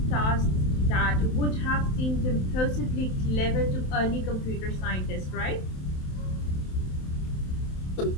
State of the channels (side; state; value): right; late; 27 ms